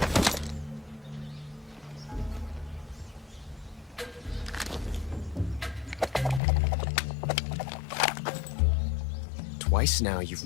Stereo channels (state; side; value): drops out; right; at 6.4 s